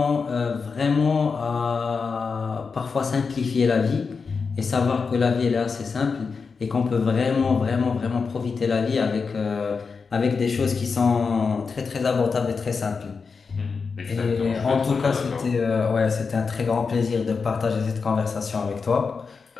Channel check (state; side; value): quieter; right; 5.1 dB